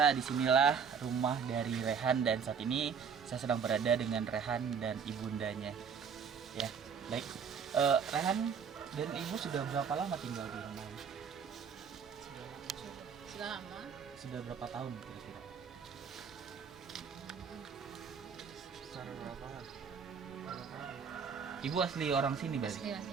disinilah rumah dari Rehan, dan saat ini saya sedang berada dengan Rehan dan ibundanya. Ya, baik. Rehan dan Ibu sudah berapa lama tinggal di rumah ini? Sudah lama. Sudah berapa tahun kira-kira? Secara berapa? Ibu asli orang sini berarti? Asli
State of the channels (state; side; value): quieter; left; 6.6 dB